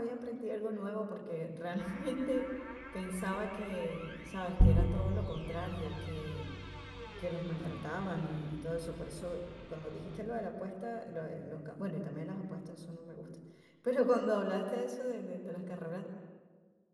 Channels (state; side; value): identical; both; correlation 1.00